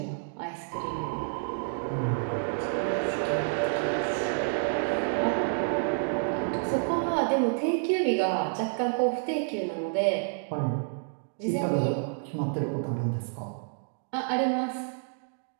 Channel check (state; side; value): silent; left; digital silence